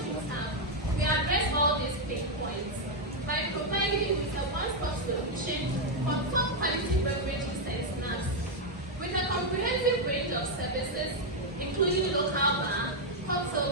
House, we address all these pain points by providing you with a one-stop solution for top quality beverages and snacks. With a comprehensive range of services, including local bar,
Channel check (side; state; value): both; normal; correlation 0.00